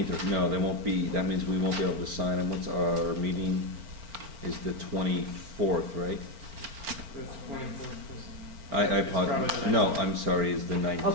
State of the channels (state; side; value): late; left; 4.4 ms